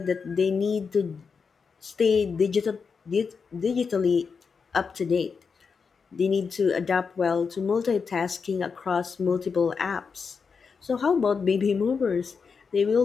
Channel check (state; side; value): quieter; right; 5.5 dB